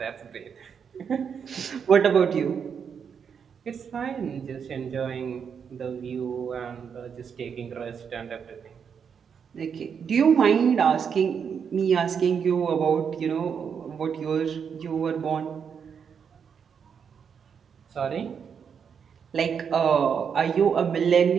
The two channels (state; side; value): quieter; left; 7.0 dB